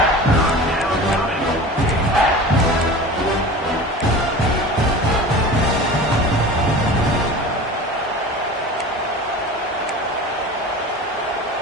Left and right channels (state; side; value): normal; both; correlation 0.36